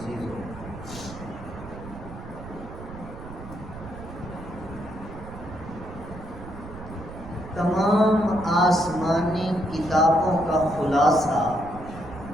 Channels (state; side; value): noise; right; rumble, 13 dB below the sound